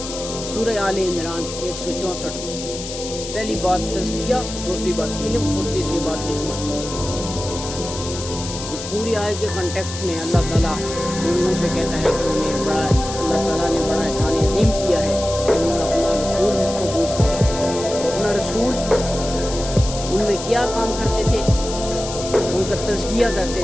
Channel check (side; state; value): left; noise; hiss, 9 dB below the sound